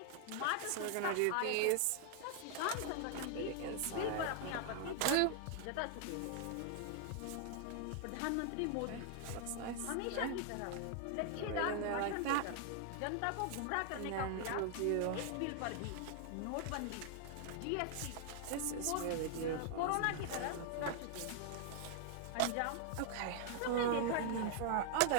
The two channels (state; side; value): different; both; correlation 0.00